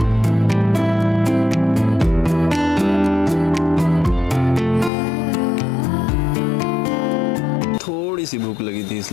थोड़ी सी भूख लगी थी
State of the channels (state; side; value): drops out; right; at 4.9 s